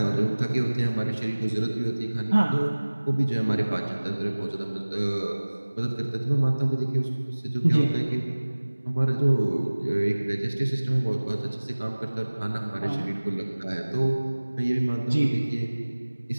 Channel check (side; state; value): both; inverted; correlation -1.00